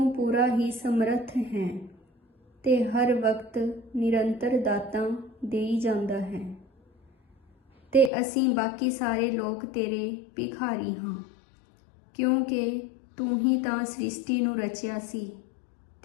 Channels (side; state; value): right; drops out; at 8.1 s